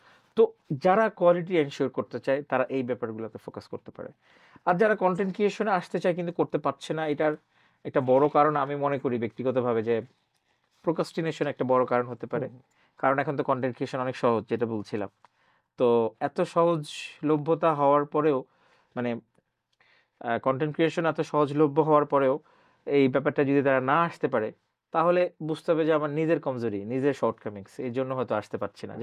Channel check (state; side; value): identical; both; correlation 1.00